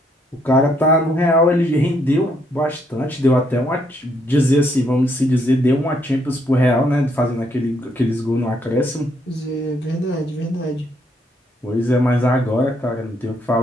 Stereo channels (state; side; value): normal; both; correlation 0.72